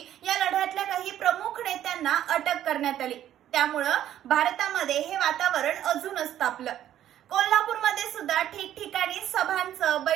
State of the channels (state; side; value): quieter; left; 11.6 dB